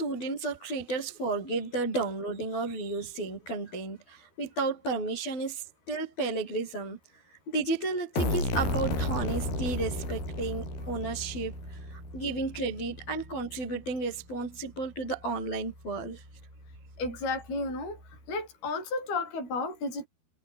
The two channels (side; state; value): right; late; 12 ms